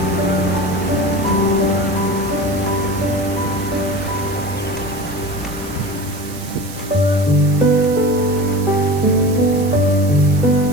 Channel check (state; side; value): noise; right; hiss, 16 dB below the sound